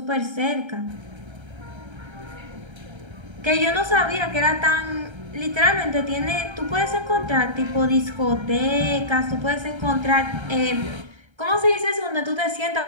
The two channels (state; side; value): late; left; 1.3 ms